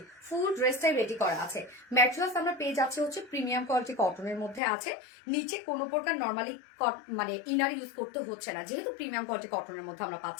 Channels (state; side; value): drops out; right; at 4.6 s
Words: ফুল ড্রেসটাই রেডি করা আছে। ম্যাটেরিয়ালস আমরা পেয়ে যাচ্ছি হচ্ছে প্রিমিয়াম কোয়ালিটি কটনের মধ্যে আছে। নিচে কোনো প্রকার নর্মালি মানে ইনার ইউজ করতে হচ্ছে না, যেহেতু প্রিমিয়াম কোয়ালিটি কটনের মধ্যে আমরা